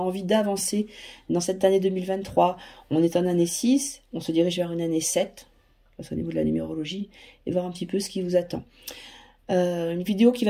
d'avancer dans cette année 2023. On est en année 6, on se dirige vers une année 7. Au niveau de la numérologie, et voir un petit peu ce qui vous attend. Une vidéo qui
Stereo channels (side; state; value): both; identical; correlation 1.00